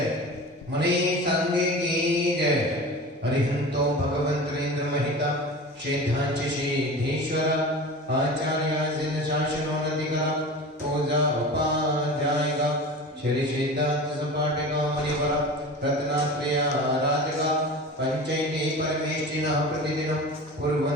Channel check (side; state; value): both; normal; correlation 0.34